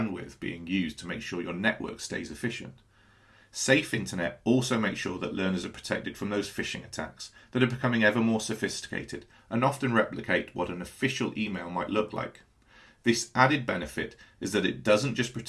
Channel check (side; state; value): both; identical; correlation 1.00